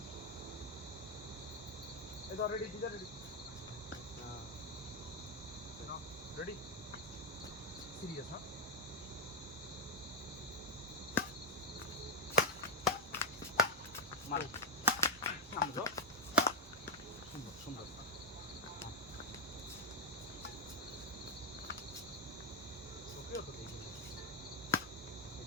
এই ধর রেডি দিদা রেডি রেডি সিরিয়াস হ্যাঁ মারো সামনে যাও সুন্দর সুন্দর ওকেও তো দেখি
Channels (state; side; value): normal; both; correlation 0.03